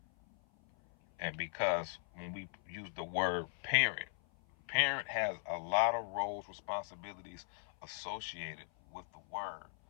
And because when we use the word parent, parent has a lot of roles, responsibilities associated with the word.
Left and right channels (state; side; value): silent; right; 52 dB below the other